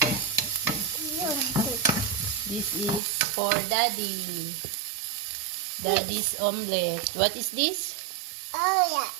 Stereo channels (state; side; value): drops out; left; at 3.0 s